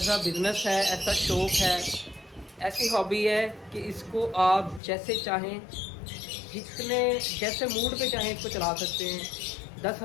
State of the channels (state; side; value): drops out; right; at 4.8 s